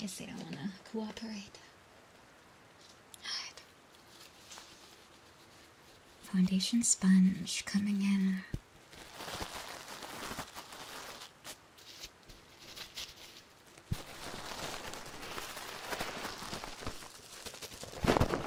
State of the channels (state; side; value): identical; both; correlation 1.00